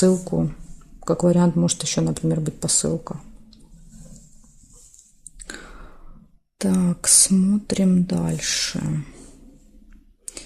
Как вариант, может еще, например, быть посылка. Так, смотрим дальше.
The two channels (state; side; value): identical; both; correlation 1.00